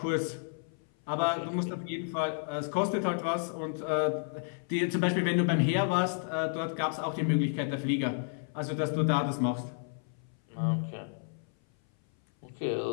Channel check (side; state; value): right; silent; 57 dB below the other